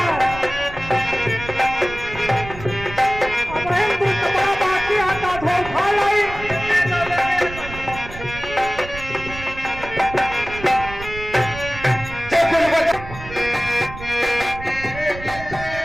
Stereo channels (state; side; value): noise; right; rumble, 12 dB below the sound